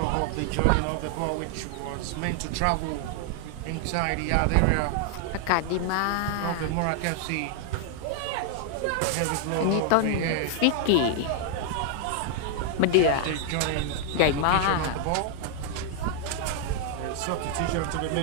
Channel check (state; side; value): different; both; correlation 0.00